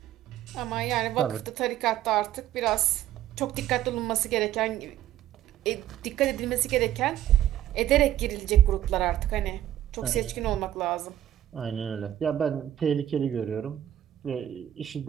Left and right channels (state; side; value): quieter; left; 12.3 dB